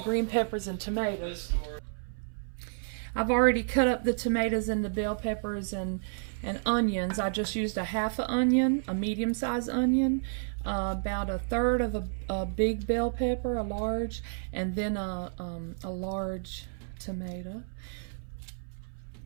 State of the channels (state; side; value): silent; left; 57 dB below the other